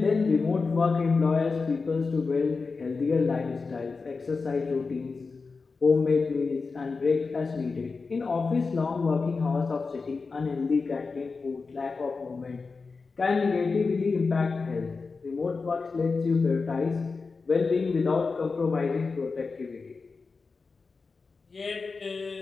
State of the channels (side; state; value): right; quieter; 4.4 dB